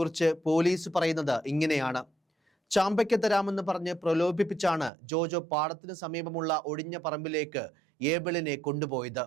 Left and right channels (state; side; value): drops out; left; at 4.9 s